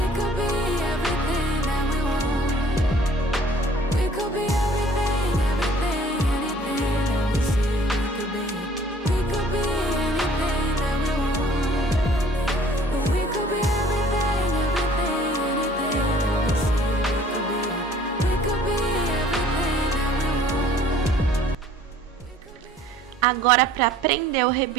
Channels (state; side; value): normal; both; correlation 0.54